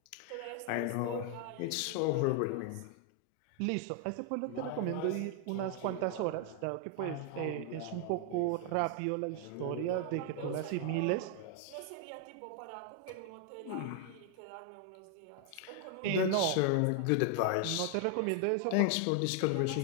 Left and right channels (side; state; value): both; different; correlation 0.00